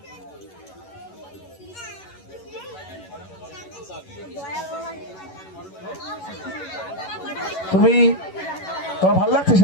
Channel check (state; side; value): late; right; 11 ms